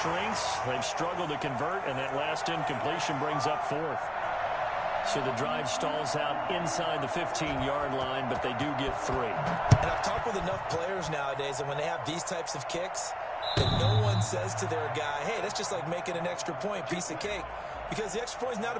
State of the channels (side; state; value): both; identical; correlation 1.00